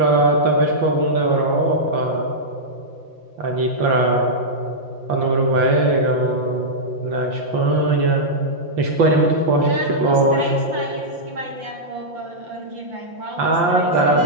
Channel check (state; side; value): late; left; 5.8 ms